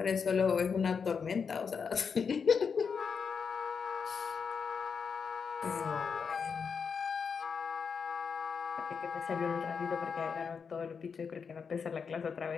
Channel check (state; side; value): quieter; right; 6.0 dB